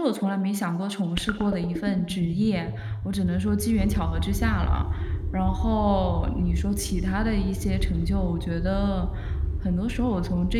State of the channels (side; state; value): both; identical; correlation 1.00